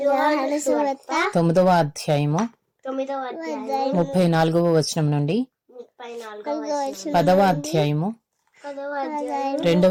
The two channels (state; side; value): identical; both; correlation 1.00